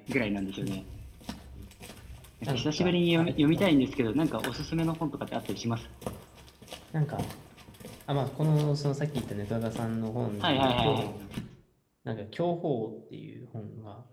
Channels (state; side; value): identical; both; correlation 1.00